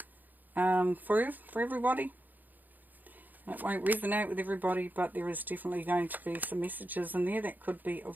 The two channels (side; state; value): left; late; 0.085 ms